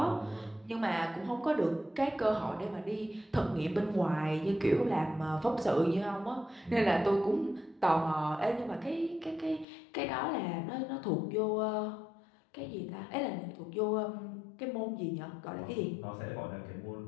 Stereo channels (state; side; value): drops out; right; at 9.7 s